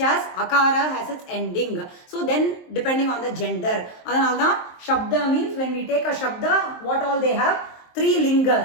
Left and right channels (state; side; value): late; right; 23 ms